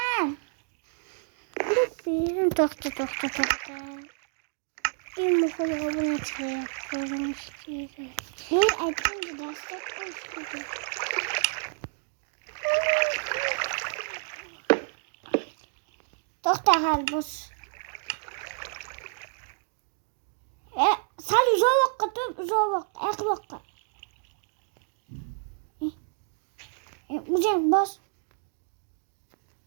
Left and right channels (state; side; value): silent; left; digital silence